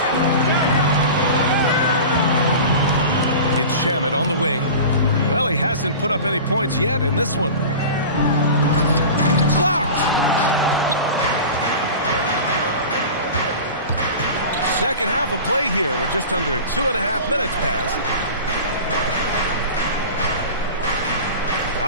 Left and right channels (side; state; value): both; inverted; correlation -0.34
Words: It's Shamet on the wing. Well, he hasn't put up any points yet in this one. Blocked. Second half of play here with just under 2.5 minutes passed.